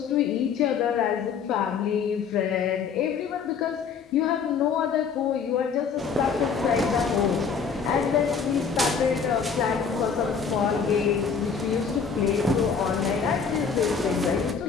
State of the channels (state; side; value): quieter; right; 6.1 dB